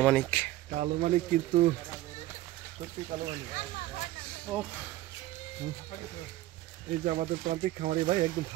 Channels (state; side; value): quieter; left; 15.8 dB